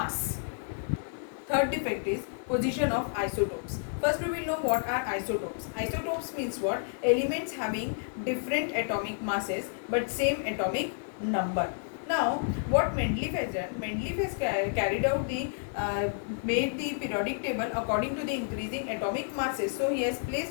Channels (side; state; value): right; silent; digital silence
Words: Third defect is position of isotopes. First we will know what are isotopes. Isotopes means what? Elements having different atomic masses but same atomic number. Now what Mendeleev has done, Mendeleev has carried out the made the periodic table according to the increasing atomic masses. So he has